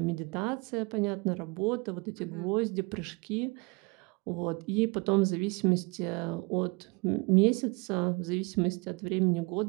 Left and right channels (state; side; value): quieter; left; 28.9 dB